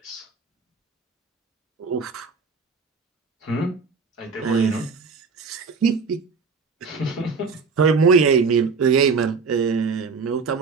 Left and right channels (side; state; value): left; quieter; 4.9 dB